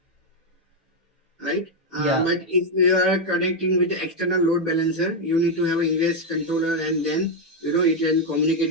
right? Yeah. But if you are connecting with the external load balancer, you need to have an ingress controller, and then it can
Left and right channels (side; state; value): both; normal; correlation 0.02